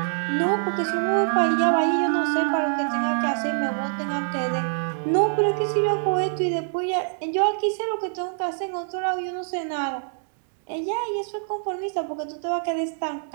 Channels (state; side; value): silent; left; 62 dB below the other